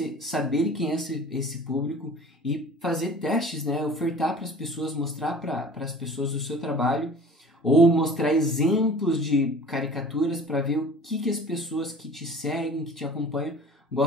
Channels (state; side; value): normal; both; correlation 0.43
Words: saber quem é esse público e fazer testes, né? Ofertar para as pessoas, mostrar para as pessoas o seu trabalho, ou mostrar exemplos de caricaturas para ver o que as pessoas que te seguem, que te acompanham,